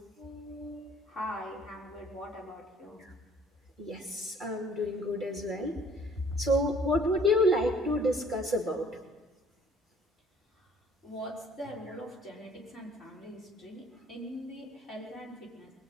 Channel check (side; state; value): both; normal; correlation 0.56